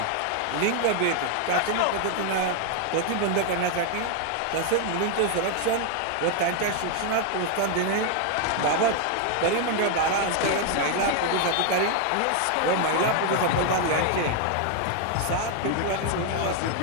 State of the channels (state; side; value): different; both; correlation 0.00